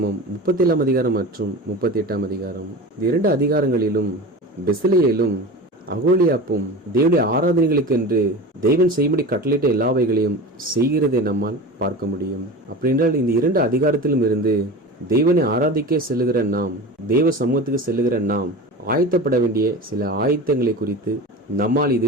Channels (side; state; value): both; normal; correlation 0.31